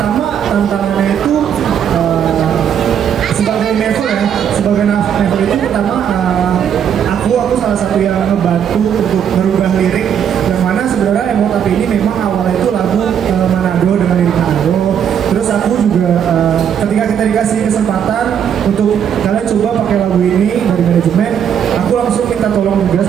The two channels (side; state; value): left; quieter; 8.5 dB